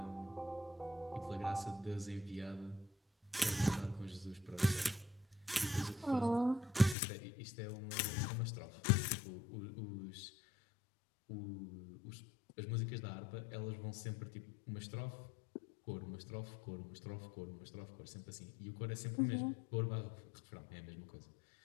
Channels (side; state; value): right; drops out; at 7.0 s